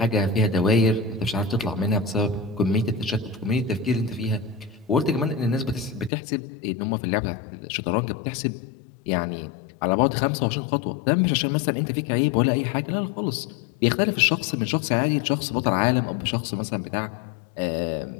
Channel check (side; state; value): right; drops out; at 6.1 s